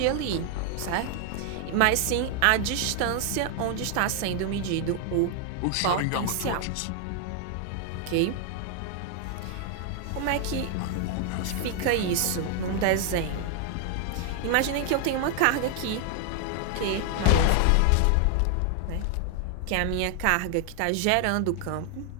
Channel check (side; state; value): both; different; correlation 0.00